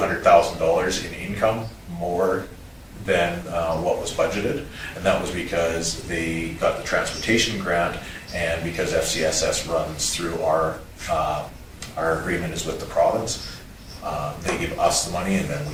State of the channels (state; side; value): identical; both; correlation 1.00